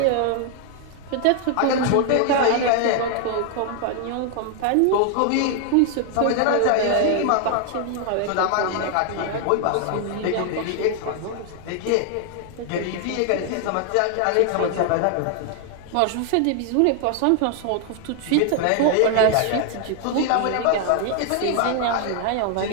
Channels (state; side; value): different; both; correlation 0.00